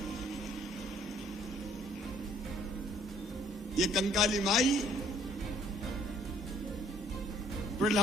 ये कंकाली माई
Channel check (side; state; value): both; normal; correlation 0.60